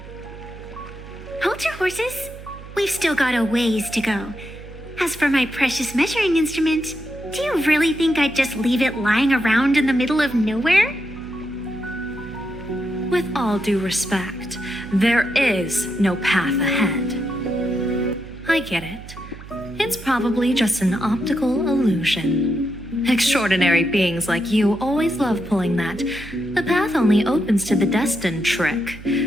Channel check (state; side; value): noise; right; hum, 15 dB below the sound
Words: Hold your horses. We've still got a ways to go. As for my precious measuring instrument, do you really think I'd just leave it lying around in the middle of nowhere? With all due respect, there is no path ahead. I get it. It's probably just an optical illusion. Extraordinary beings like you always love pulling that "the path only opens to the destined" trick.